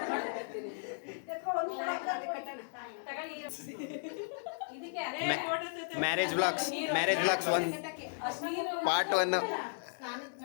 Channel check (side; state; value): right; silent; digital silence